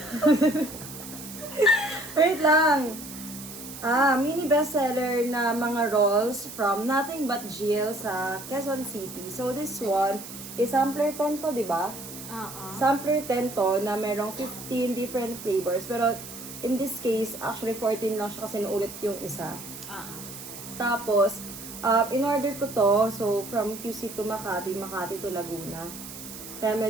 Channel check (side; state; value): right; noise; hiss, 12 dB below the sound